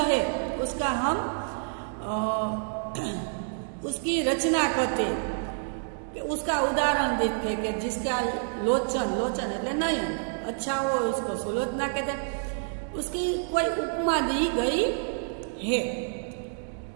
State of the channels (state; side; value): silent; left; digital silence